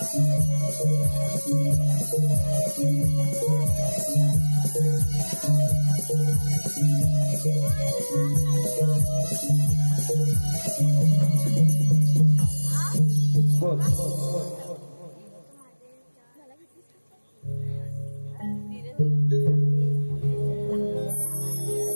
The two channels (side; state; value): both; inverted; correlation -1.00